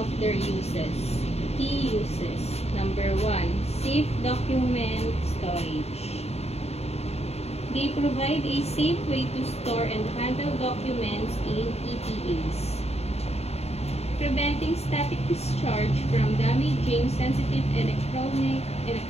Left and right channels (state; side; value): late; right; 0.30 ms